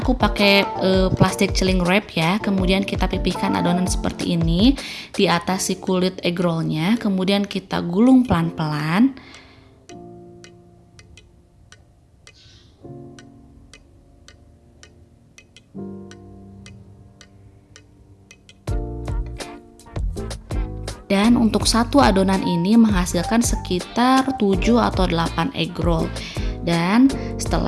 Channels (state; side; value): identical; both; correlation 1.00